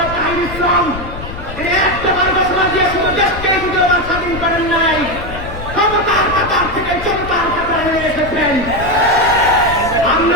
তাহির ইসলাম তিনি একটাবার ঘোষণা দিয়ে শুধু দেশকে দ্বিতীয়বার স্বাধীন করেন নাই, ক্ষমতার কাতার থেকে জনতার কাতারে নিয়ে এসেছেন।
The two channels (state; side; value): noise; left; rumble, 10 dB below the sound